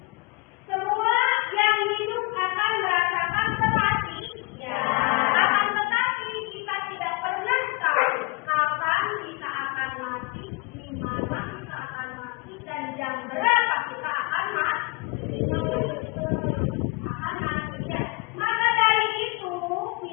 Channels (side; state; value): right; quieter; 27.3 dB